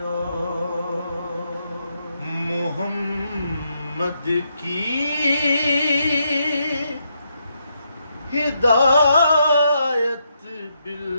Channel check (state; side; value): inverted; both; correlation -0.79